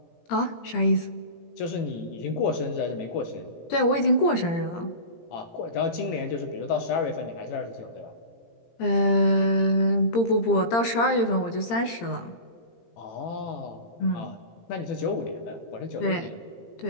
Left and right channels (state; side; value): late; right; 17 ms